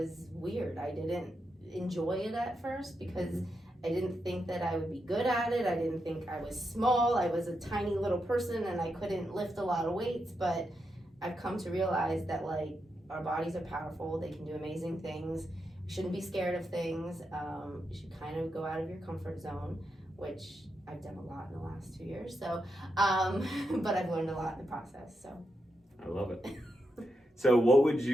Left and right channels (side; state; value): both; normal; correlation 0.85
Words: weird. I didn't enjoy it at first because I didn't think that I would be good at it. I didn't think I was small. I was a tiny little person and I couldn't lift a lot of weights, but I've come to realize that our bodies are powerful. They can do amazing things. You shouldn't be scared of things. You should kind of go out of your comfort zone, which I've done a lot in the last 2 years. So, but I've learned a lot in the process. So, I love it. So, what would